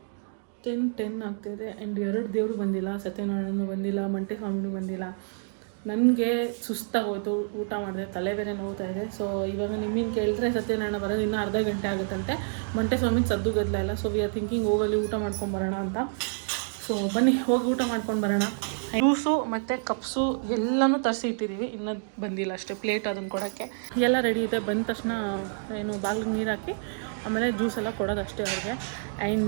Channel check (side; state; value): left; silent; digital silence